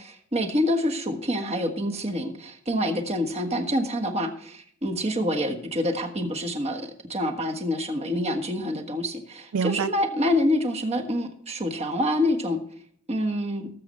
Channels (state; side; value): normal; both; correlation 0.58